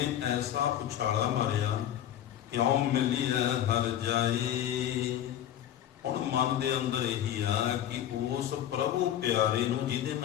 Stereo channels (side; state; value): right; quieter; 11.2 dB